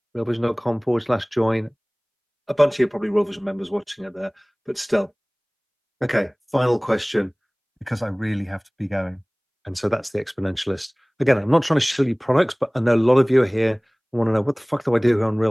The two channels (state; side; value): identical; both; correlation 1.00